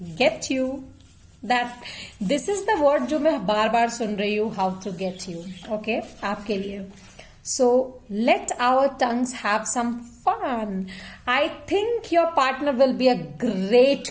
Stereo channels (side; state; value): both; identical; correlation 1.00